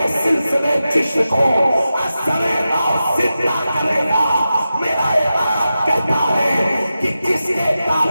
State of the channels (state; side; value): inverted; both; correlation -0.92